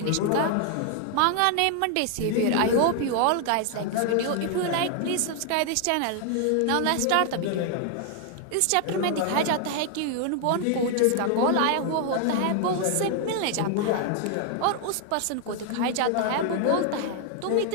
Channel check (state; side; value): different; both; correlation 0.00